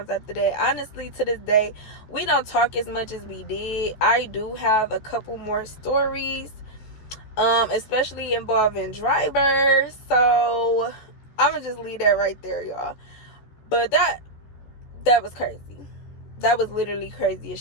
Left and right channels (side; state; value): right; late; 14 ms